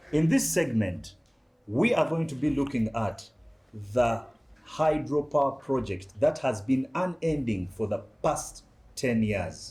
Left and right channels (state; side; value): identical; both; correlation 1.00